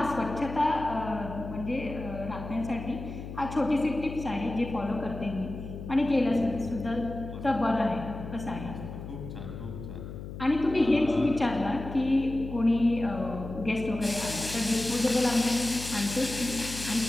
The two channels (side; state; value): left; noise; hum, 10 dB below the sound